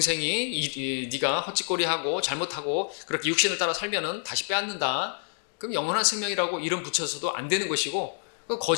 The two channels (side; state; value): right; silent; 60 dB below the other